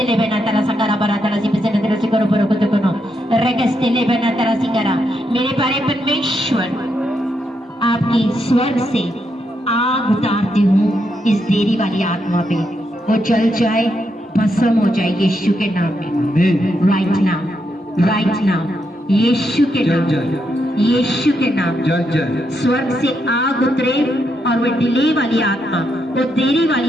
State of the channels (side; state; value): both; normal; correlation 0.81